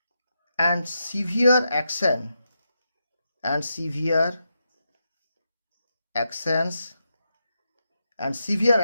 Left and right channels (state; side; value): inverted; both; correlation -0.85